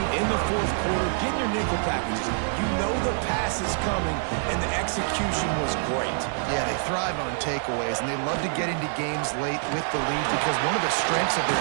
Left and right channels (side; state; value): left; silent; 61 dB below the other